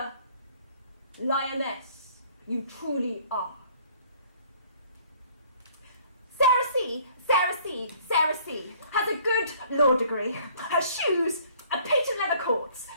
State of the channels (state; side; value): inverted; both; correlation -0.57